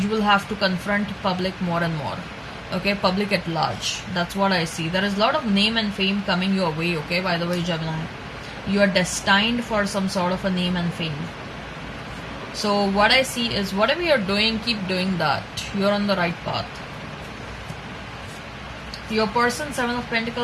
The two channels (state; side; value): identical; both; correlation 1.00